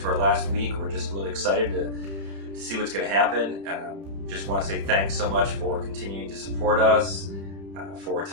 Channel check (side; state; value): left; late; 31 ms